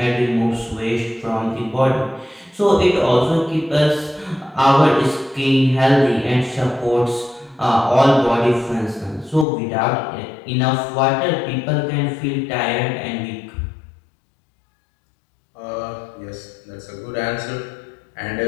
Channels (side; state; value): right; drops out; at 9.5 s